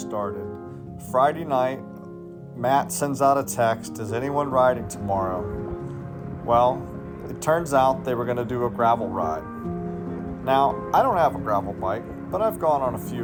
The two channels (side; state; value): both; identical; correlation 1.00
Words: Friday night, Matt sends out a text, is anyone riding tomorrow? Well, it turns out they were going to do a gravel ride. Now, I don't have a gravel bike, but I've gone on a few